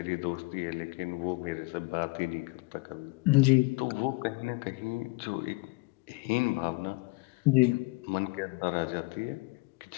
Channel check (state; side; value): quieter; right; 26.3 dB